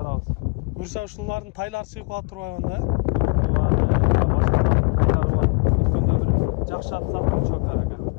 Буюрса ушулардын тайлары чыгып калат турбайбы да? Өткөндө бир жакшы ат саттым чокар ага.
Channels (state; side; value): quieter; right; 32.0 dB